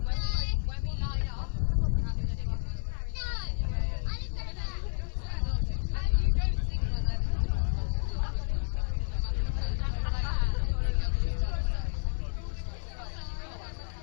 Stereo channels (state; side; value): silent; right; 57 dB below the other